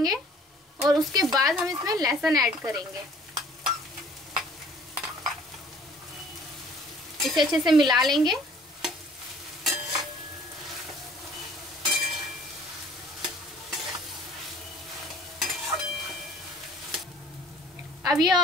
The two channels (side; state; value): both; normal; correlation 0.54